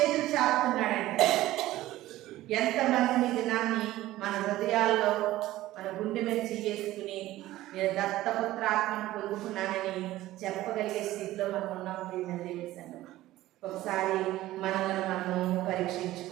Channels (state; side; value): quieter; left; 15.8 dB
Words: చాపుతున్నాడంటే. ఎంతమంది దినాన్ని మన హృదయాల్లో మన గుండె మీద చేసుకుని నేను దత్తపుత్రాత్మను పొందుకున్నానని చెప్పగలిగే స్థితిలో మనం ఉన్నాం. దేవుని సంగమా, ఒకసారి మనల్ని మనం